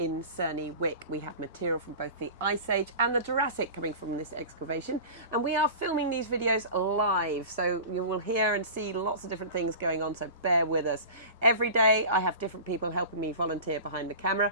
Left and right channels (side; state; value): both; inverted; correlation -0.35